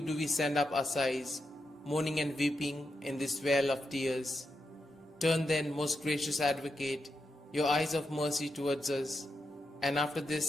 we send up our sighs, mourning and weeping in this vale of tears. Turn then, most gracious Advocate, your eyes of mercy towards us, and after this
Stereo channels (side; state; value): both; normal; correlation 0.86